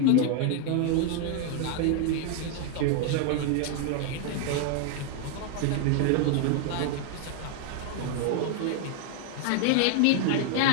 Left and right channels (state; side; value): different; both; correlation 0.01